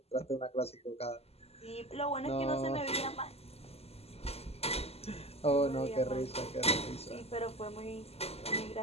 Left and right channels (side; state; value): right; late; 0.29 ms